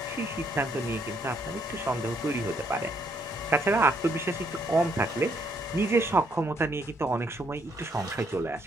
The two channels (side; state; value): both; normal; correlation 0.71